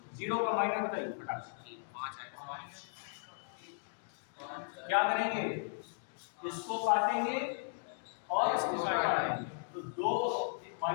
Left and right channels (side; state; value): right; silent; digital silence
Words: 0 का माइनर बताइए फटाक से। क्या करेंगे, इसको काटेंगे और इसको काटेंगे तो 2